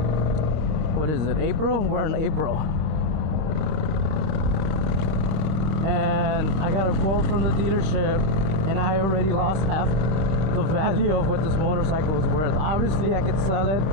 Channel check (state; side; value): late; left; 26 ms